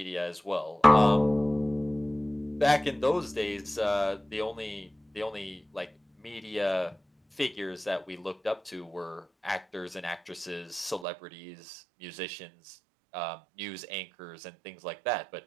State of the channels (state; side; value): drops out; left; at 11.1 s